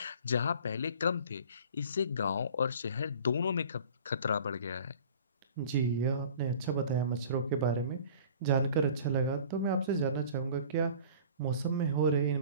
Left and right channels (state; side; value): inverted; both; correlation -0.45